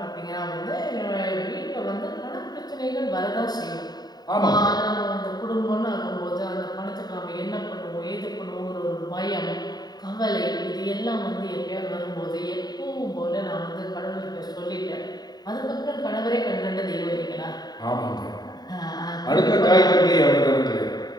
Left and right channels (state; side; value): late; right; 0.20 ms